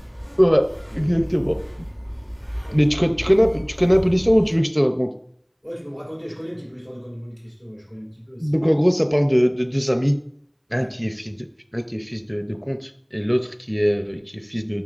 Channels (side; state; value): both; identical; correlation 1.00